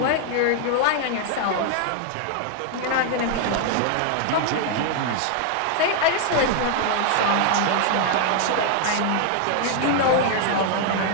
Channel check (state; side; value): different; both; correlation 0.00